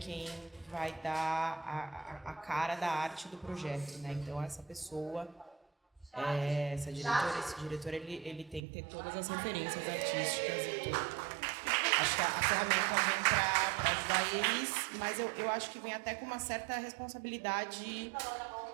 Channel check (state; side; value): drops out; left; at 8.6 s